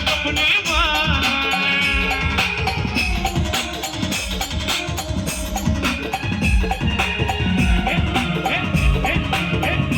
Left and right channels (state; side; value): identical; both; correlation 1.00